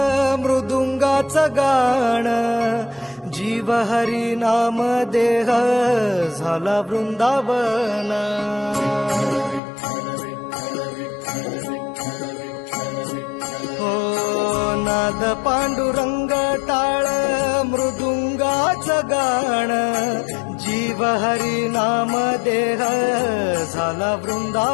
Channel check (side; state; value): right; drops out; at 9.6 s